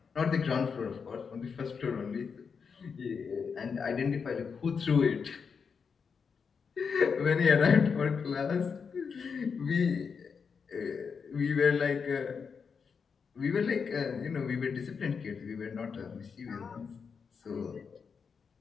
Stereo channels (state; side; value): quieter; right; 5.9 dB